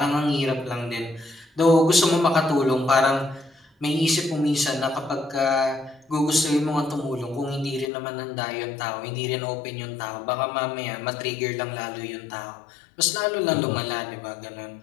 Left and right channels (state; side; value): drops out; right; at 7.9 s